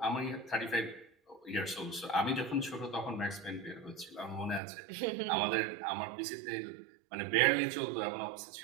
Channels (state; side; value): drops out; left; at 4.6 s